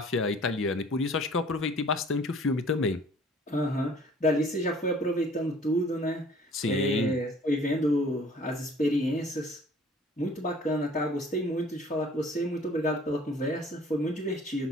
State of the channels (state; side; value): normal; both; correlation 0.53